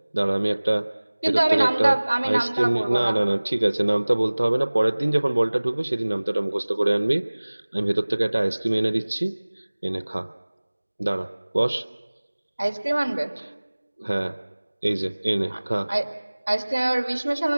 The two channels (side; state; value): both; inverted; correlation -1.00